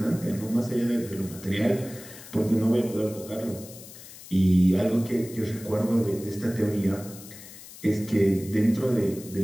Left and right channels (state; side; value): noise; left; hiss, 17 dB below the sound